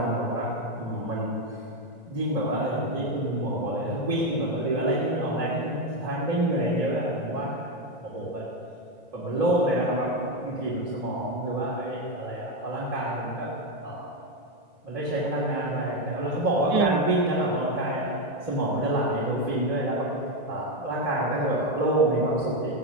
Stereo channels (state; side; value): late; left; 1.9 ms